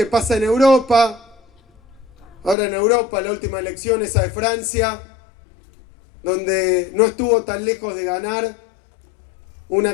pasa en Europa, ahora en Europa, la última elección, esa de Francia, donde no estuvo tan lejos de ganar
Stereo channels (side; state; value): right; drops out; at 2.6 s